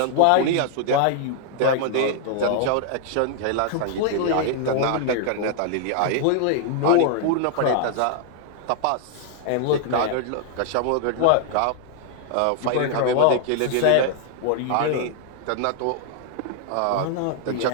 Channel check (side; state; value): both; different; correlation 0.00